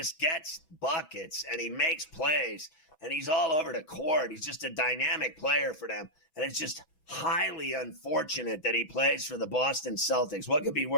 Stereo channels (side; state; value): right; late; 5.8 ms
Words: gets buckets, and he makes plays. and he's all over the court. He's just a dynamic player for them. And it's just highly unfortunate that he plays for the Boston Celtics. What could be